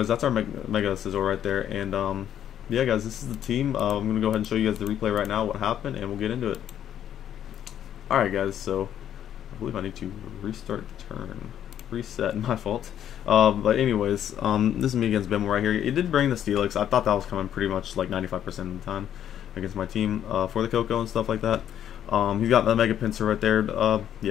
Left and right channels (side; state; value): right; quieter; 10.3 dB